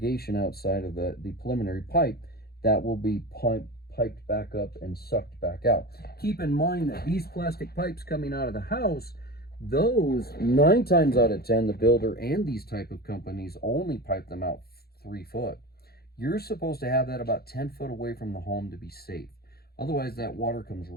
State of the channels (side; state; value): right; late; 0.45 ms